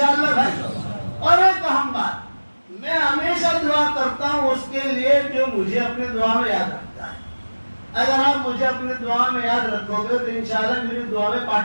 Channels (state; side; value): inverted; both; correlation -1.00